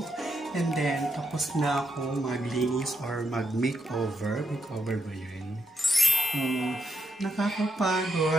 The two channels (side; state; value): both; normal; correlation 0.81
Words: And then, tapos na ako maglinis or mag-makeover. Makeover ba yun?